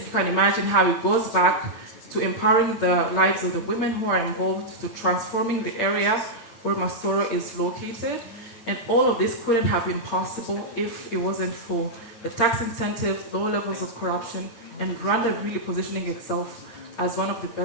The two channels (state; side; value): late; right; 8.7 ms